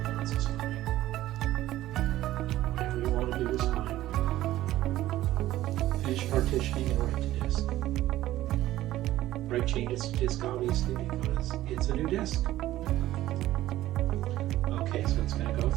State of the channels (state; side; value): quieter; left; 14.9 dB